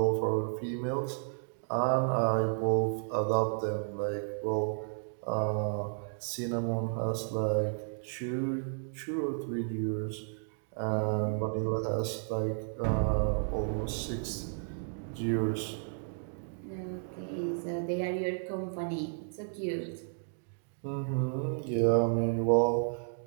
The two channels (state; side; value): silent; left; digital silence